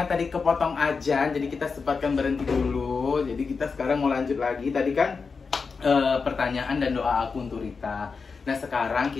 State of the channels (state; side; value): quieter; right; 4.9 dB